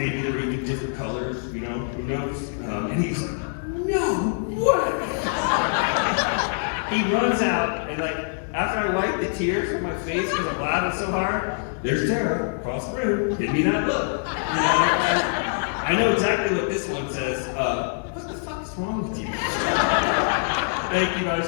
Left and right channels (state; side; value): silent; right; digital silence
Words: they're even different colors, you know, who knows?" And he's like, "No way!" He runs out, and like, after I wipe the tears from my face because I'm laughing so hard, there's Tara across the room, give me that look. You know, I know exactly what this one says. What the fuck is wrong with you? Thank you guys